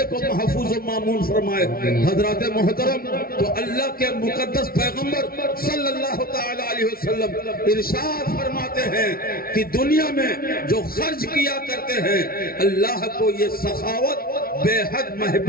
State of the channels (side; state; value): right; late; 0.43 ms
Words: کو محفوظ و معمول فرمائے۔ حضرات محترم، تو اللہ کے مقدس پیغمبر صلی اللہ تعالی علیہ وسلم ارشاد فرماتے ہیں کہ دنیا میں جو خرچ کیا کرتے ہیں اللہ کو یہ سخاوت بے حد